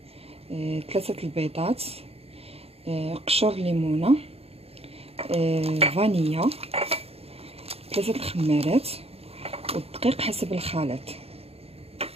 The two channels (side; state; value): left; late; 0.29 ms